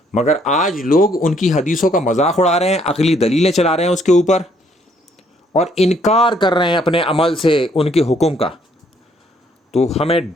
مگر آج لوگ ان کی حدیثوں کا مذاق اڑا رہے ہیں، عقلی دلیلیں چلا رہے ہیں اس کے اوپر، اور انکار کر رہے ہیں اپنے عمل سے ان کے حکم کا۔ تو ہمیں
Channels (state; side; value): normal; both; correlation 0.67